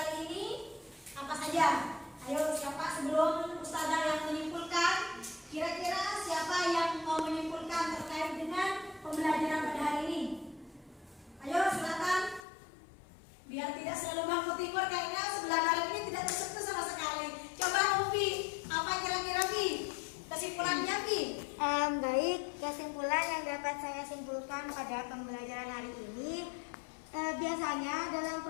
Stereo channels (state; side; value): drops out; right; at 12.5 s